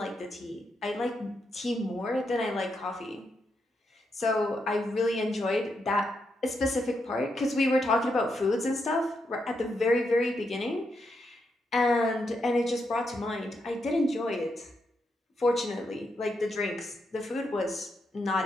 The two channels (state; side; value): normal; both; correlation 0.82